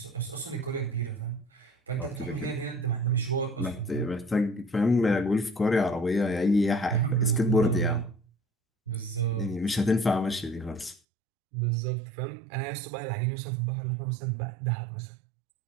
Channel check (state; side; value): drops out; left; at 11.0 s